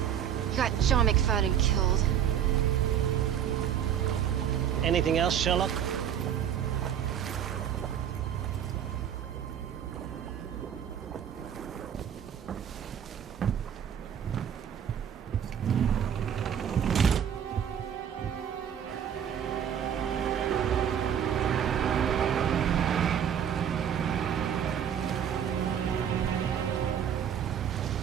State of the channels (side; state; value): left; quieter; 9.0 dB